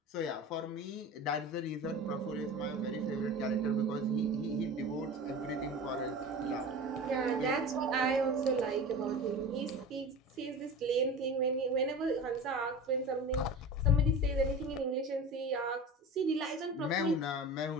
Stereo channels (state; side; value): normal; both; correlation 0.33